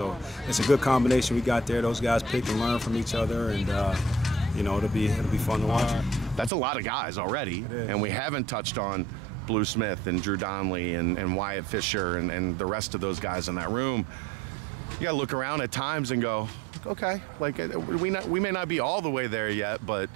it's a good combination we got there. Those guys pick and learn from each other, and you know, it'll be fun to watch. That's a lot of guys already, and we haven't touched on Blue Smith and Drew Donnelly and Wyatt Fisher and the rest of those guys in that room. You gotta look around at times and go, okay, like we may not be all the way there yet, but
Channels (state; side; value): drops out; left; at 6.5 s